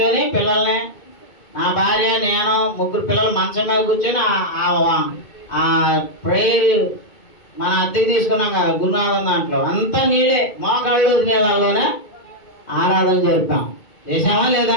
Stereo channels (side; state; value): right; late; 2.2 ms